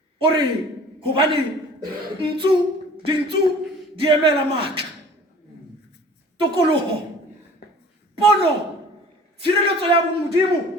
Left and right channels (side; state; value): both; normal; correlation 0.47